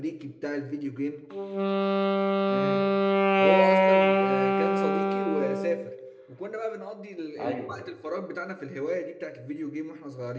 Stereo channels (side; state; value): both; identical; correlation 1.00